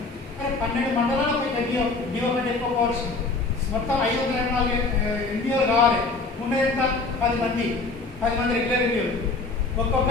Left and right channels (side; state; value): right; quieter; 3.7 dB